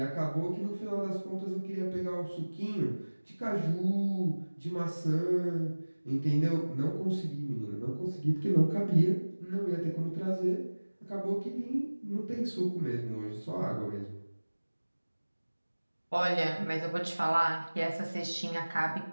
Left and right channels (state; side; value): inverted; both; correlation -1.00